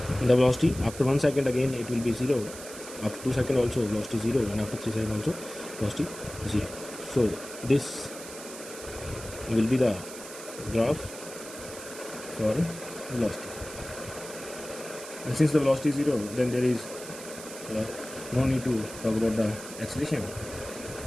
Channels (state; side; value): noise; right; hiss, 13 dB below the sound